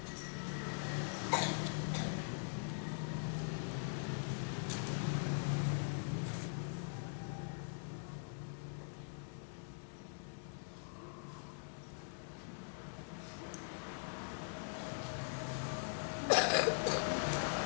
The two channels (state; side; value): silent; right; digital silence